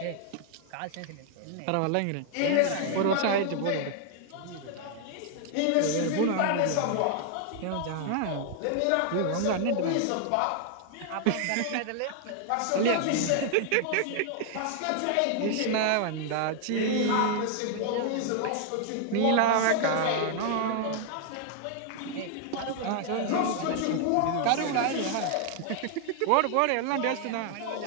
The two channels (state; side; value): different; both; correlation 0.00